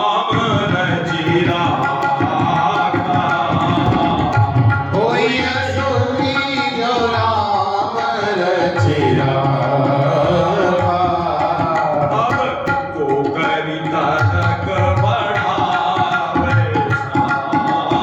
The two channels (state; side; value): identical; both; correlation 1.00